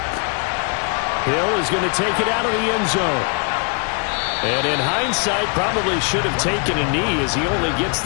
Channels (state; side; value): quieter; right; 37.6 dB